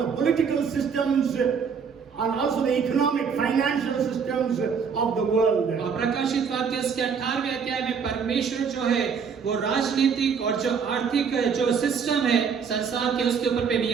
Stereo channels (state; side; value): quieter; left; 6.3 dB